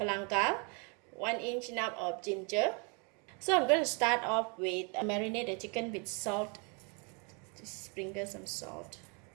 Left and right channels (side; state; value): left; quieter; 34.5 dB